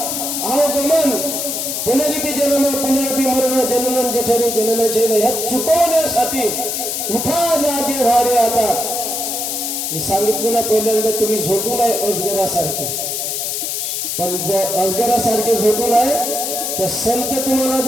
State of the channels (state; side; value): noise; left; hiss, 2 dB below the sound